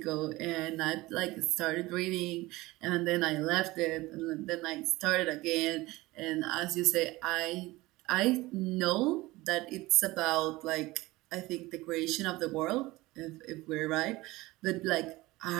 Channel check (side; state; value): left; quieter; 20.0 dB